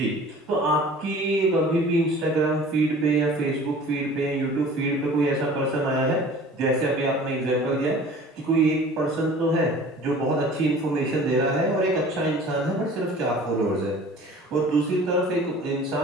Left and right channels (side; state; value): both; normal; correlation 0.45